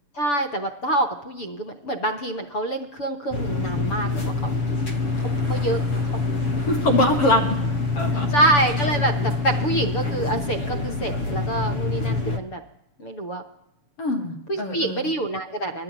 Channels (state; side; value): late; right; 6.9 ms